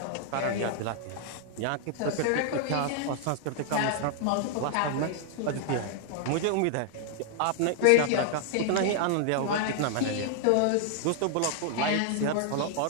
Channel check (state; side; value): different; both; correlation 0.00